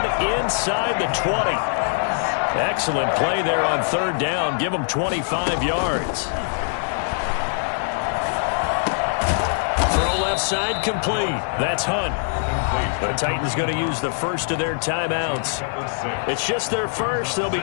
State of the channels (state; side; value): silent; right; digital silence